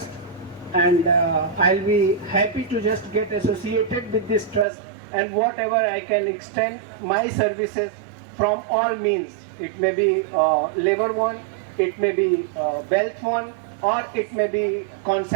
and I'll be happy to just get associated with this trust, and whatever I can extend my services from all means. It may be labor one, it may be wealth one, or it may be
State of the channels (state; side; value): drops out; left; at 4.7 s